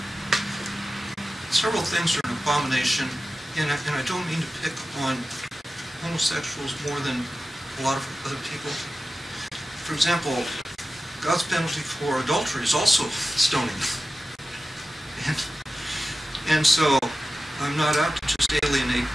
Several things are an abomination, and I don't mean to pick on homosexuals more than a lot of other people. For example, God's penalty for adultery is also stoning. And so I'm not out to just alienate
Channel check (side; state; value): both; normal; correlation 0.95